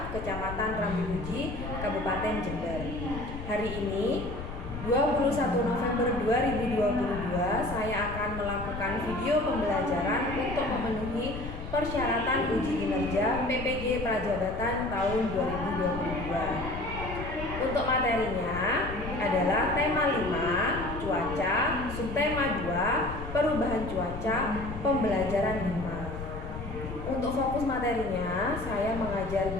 Kecamatan Rambimuji, Kabupaten Jember. Hari ini, 21 November 2022, saya akan melakukan video pembelajaran untuk memenuhi persyaratan uji kinerja PPG Prajabatan tahun 2022. Untuk materinya adalah tema 5, cuaca, subtema 2, perubahan cuaca, pembelajaran 5. Untuk fokus materinya, saya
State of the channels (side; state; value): left; noise; rumble, 8 dB below the sound